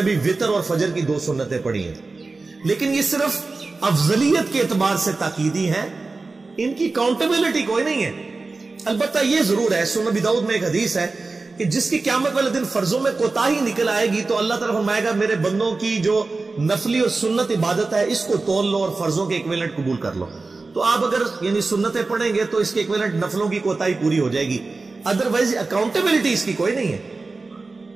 بھی وتر اور فجر کی 2 سنتیں پڑھی ہیں، لیکن یہ صرف افضلیت کے اعتبار سے تاکیدی ہیں، ان کی کاؤنٹیبلٹی کوئی نہیں ہے۔ البتہ یہ ضرور ہے، سنن ابی داؤد میں ایک حدیث ہے کہ جس کی قیامت والے دن فرضوں میں کوتاہی نکل آئے گی تو اللہ تعالیٰ فرمائے گا میرے بندوں کی جو نفلی اور سنت عبادت ہے اس کو تول لو اور فرضوں کے ایکویلنٹ قبول کر لو۔ تو آپ اگر یعنی سنتیں پڑھیں گے تو اس کے ایکویلنٹ نفلوں کی کوتاہی پوری ہو جائے گی، ادروائز اکاؤنٹیبلٹی اس کی کوئی نہیں ہے،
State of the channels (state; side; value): quieter; left; 3.7 dB